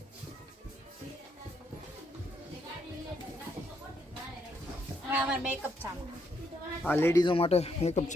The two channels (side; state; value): both; normal; correlation 0.75